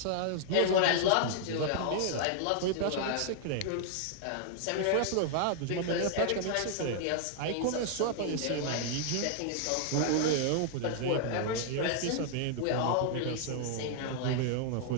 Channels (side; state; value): both; different; correlation -0.01